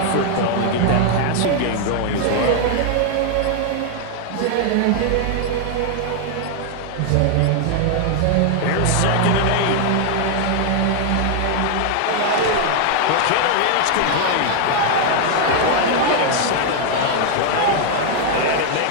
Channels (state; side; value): different; both; correlation 0.00